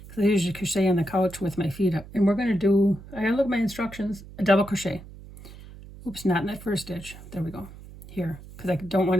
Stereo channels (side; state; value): right; noise; hum, 17 dB below the sound